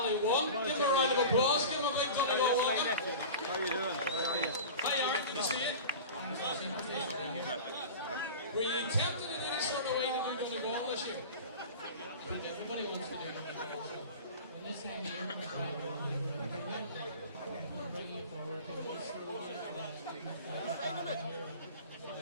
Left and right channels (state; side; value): inverted; both; correlation -0.34